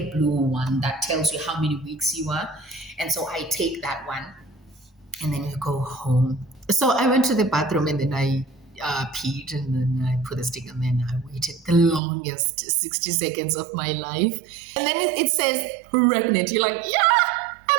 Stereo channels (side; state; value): left; drops out; at 12.0 s